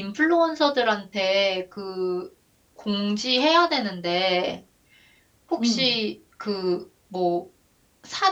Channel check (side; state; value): both; identical; correlation 1.00